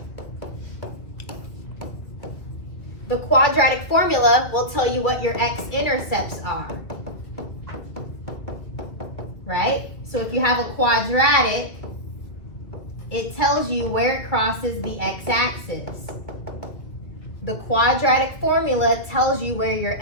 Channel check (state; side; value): late; right; 2.1 ms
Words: The quadratic formula will tell you what your x-intercepts are, right? So if you have a quadratic, it tells you where it crosses the x-axis. The quadratic formula tells you where your